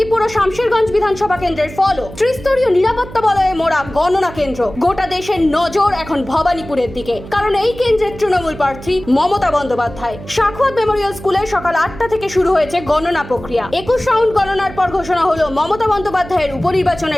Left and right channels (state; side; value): noise; right; hum, 15 dB below the sound